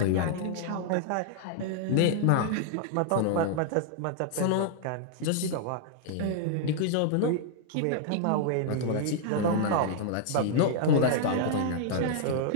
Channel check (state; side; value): different; both; correlation -0.01